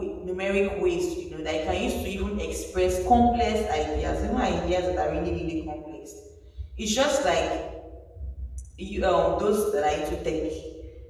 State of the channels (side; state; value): both; identical; correlation 1.00